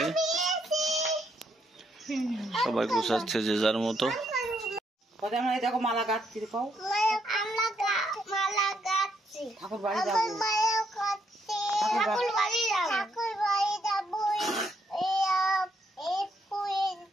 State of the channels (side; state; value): both; normal; correlation 0.75